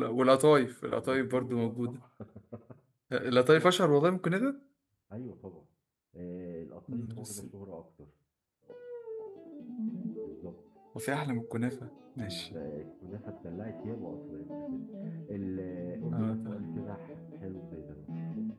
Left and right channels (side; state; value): both; identical; correlation 1.00